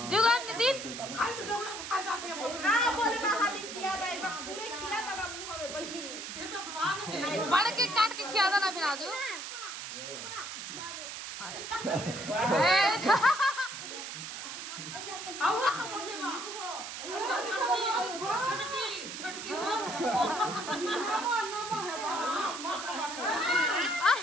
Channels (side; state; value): right; noise; hiss, 8 dB below the sound